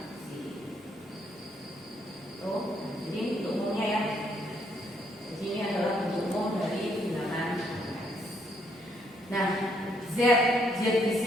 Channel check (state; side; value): normal; both; correlation 0.72